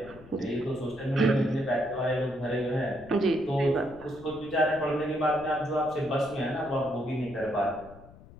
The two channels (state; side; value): noise; left; rumble, 20 dB below the sound